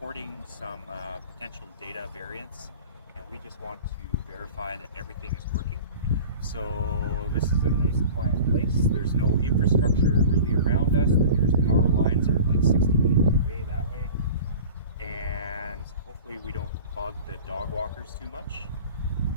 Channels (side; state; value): both; inverted; correlation -0.39